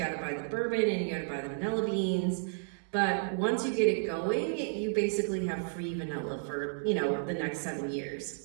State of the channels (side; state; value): left; silent; digital silence